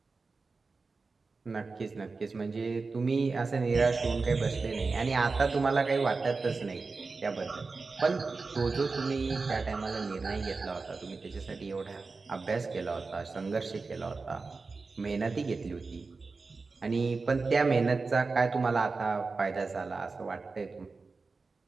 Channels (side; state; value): left; quieter; 4.1 dB